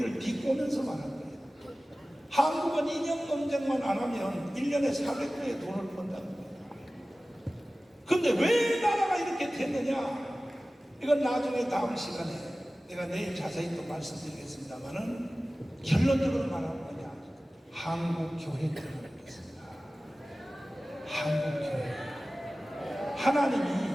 비꼬면서 말한 거예요. 한국은 이념 논쟁만 안 하면 1년에 400조의 돈을 번다는 거예요. 근데 왜 나라가 이렇게 됐느냐? 이건 나중에 다음 시간에 내가 내일 자세히 또 말씀드리겠습니다만은 결론적으로 말하는 거냐? 한국교회 때문에 그렇습니다. 한국교회.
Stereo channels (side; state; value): both; normal; correlation 0.97